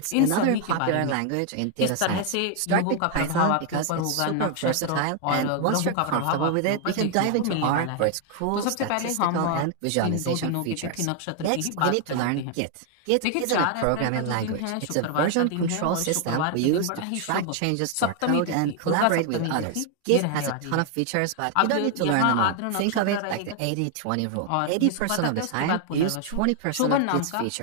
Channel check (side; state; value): both; different; correlation 0.00